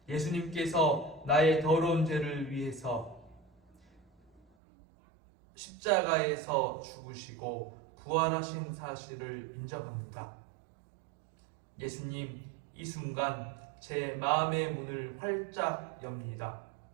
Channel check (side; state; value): left; drops out; at 4.4 s